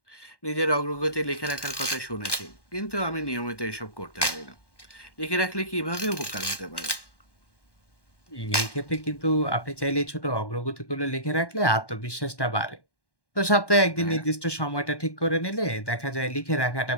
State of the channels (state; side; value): late; right; 1.1 ms